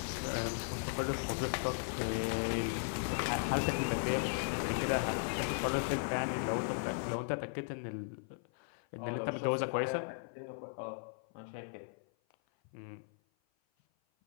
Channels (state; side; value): silent; right; 53 dB below the other